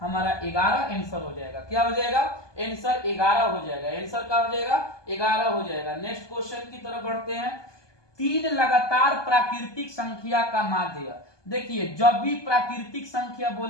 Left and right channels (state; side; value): late; right; 1.2 ms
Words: हमारा 11 आंसर हो जाएगा। क्या हो जाएगा आंसर 11 हो जाएगा। आंसर क्या हो जाएगा 11 हो जाएगा। नेक्स्ट क्वेश्चन की तरफ बढ़ते हैं। 3 लगातार प्राकृतिक संख्या का माध्य। देखिए जब भी प्राकृतिक संख्या